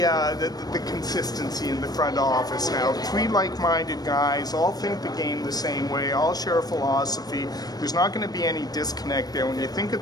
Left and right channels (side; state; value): right; late; 0.19 ms